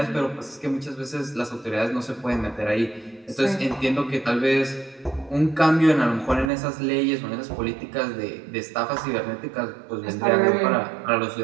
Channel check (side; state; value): left; drops out; at 6.5 s